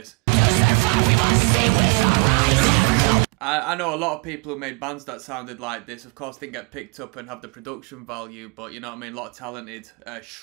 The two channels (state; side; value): quieter; left; 27.7 dB